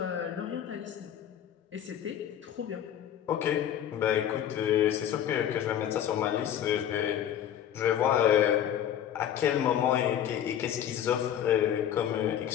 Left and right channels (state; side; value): quieter; right; 10.1 dB